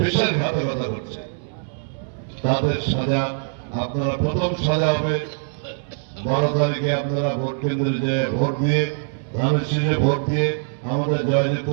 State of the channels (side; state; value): left; silent; 64 dB below the other